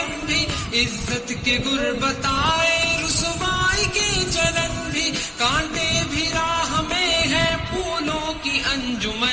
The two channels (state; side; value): identical; both; correlation 1.00